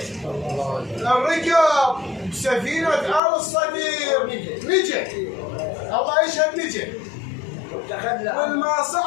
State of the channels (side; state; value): right; drops out; at 3.2 s